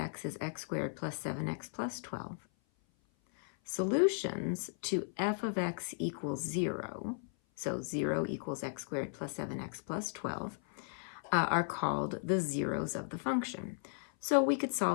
is x squared plus 7x plus 12, solutions to f of x equals 0, so 0 equals x squared plus 7x plus 12, are called the zeros of the function. So we could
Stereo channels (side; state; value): right; silent; 54 dB below the other